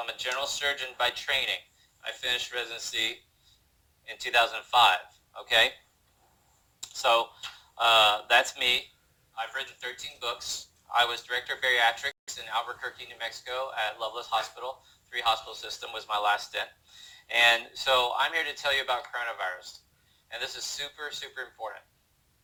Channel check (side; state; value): both; identical; correlation 1.00